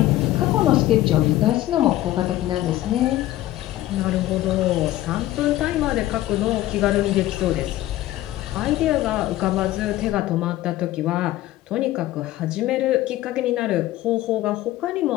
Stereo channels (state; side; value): quieter; right; 15.2 dB